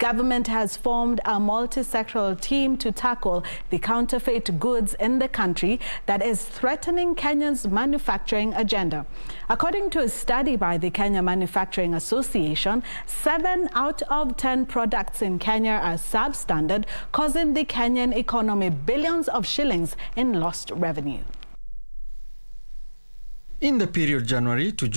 has formed a multi-sectoral team to tackle the counterfeit goods in the country that is threatening Kenya's manufacturing agenda. According to a study by the Kenya Manufacturing Association, 7 out of 10 products in Kenya are substandard, causing the Kenyan economy billions of shillings in lost revenue. In the period January to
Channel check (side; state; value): both; inverted; correlation -1.00